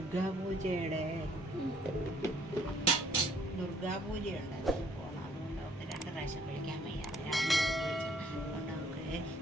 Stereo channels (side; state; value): both; normal; correlation 0.63